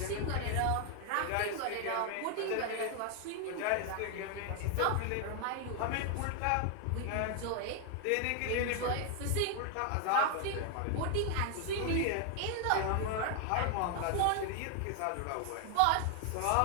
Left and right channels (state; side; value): different; both; correlation 0.00